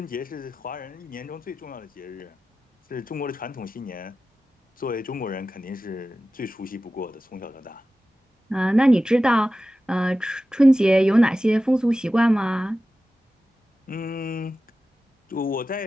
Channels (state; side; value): normal; both; correlation 0.94